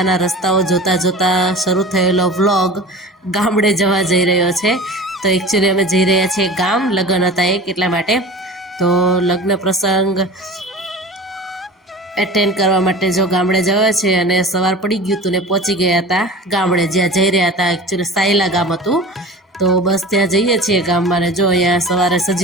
રસ્તાઓ જોતા જોતા શરૂ થયેલો વ્લોગ ગામડે જવા જઈ રહ્યો છે. તો એકચ્યુઅલી અમે જઈ રહ્યા છીએ ગામ, લગ્ન હતા એક એટલા માટે. તો લગ્ન પ્રસંગ એટેન્ડ કરવા માટે જો ગામડે જવા છે અને સવાર પડી ગયું હતું ને પહોંચી ગયા હતા ગામડે જ્યાં જઈ રહ્યા હતા. એકચ્યુઅલી સાયલા ગામ હતું. તો બસ ત્યાં જઈએ છીએ ગામમાં ને જો અહીંયા સવારે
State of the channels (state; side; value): normal; both; correlation 0.37